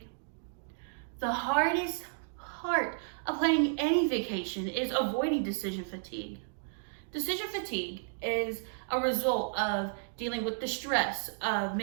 The hardest part of planning any vacation is avoiding decision fatigue. Decision fatigue is a result of dealing with the stress of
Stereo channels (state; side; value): silent; left; digital silence